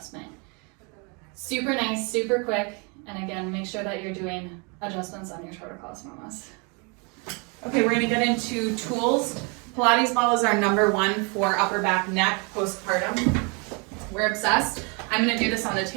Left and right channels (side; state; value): left; quieter; 32.9 dB